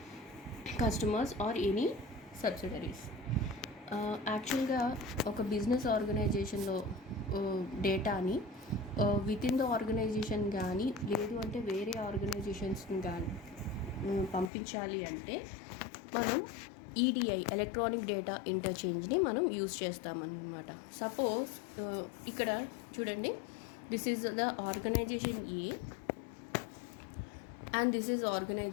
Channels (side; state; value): right; drops out; at 14.5 s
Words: customers or any subsidiaries. యాక్చువల్గా ఒక business ఆర్గనైజేషన్లో డేటాని with in the organisation కానీ లేదు అంటే వేరే ఆర్గనైజేషన్స్ని కానీ పంపించాలి అంటే మనం ఈడిఐ ఎలక్ట్రానిక్ డేటా ఇంటర్చేంజ్ని మనం యూజ్ చేస్తామన్నమాట. సపోజ్ ఇక్కడ చూడండి, this is the organization A and this is